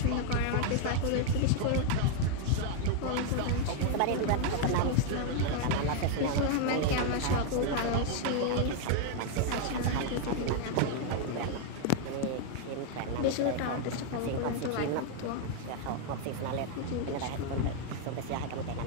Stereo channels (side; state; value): both; different; correlation 0.00